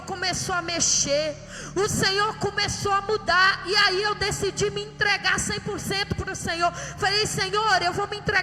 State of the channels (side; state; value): both; identical; correlation 1.00